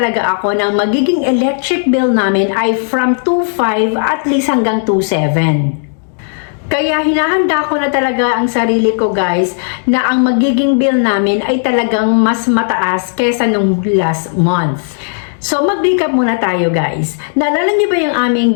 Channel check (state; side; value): silent; right; digital silence